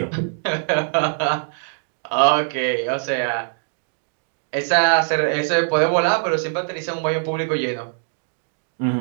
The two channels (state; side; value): silent; left; digital silence